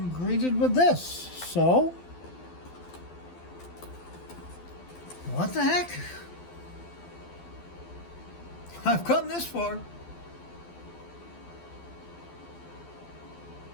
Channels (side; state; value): right; late; 12 ms